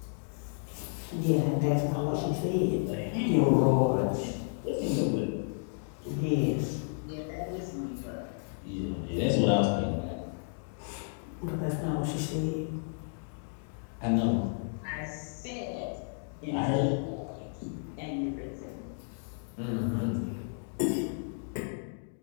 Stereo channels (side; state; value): right; silent; digital silence